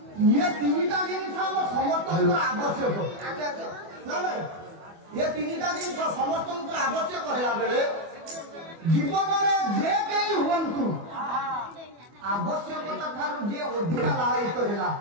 ইয়ে তিনটা জিনিস আমার সমর্থনকর আবশ্যক না না ইয়ে তিনটা জিনিস সমর্থনকর আবশ্যক হলা বেড়ে জীবনের যে কেই হুঁতু আবশ্যকতা ঠার যে অধিকা লালায়িত হেলা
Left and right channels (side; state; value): left; late; 24 ms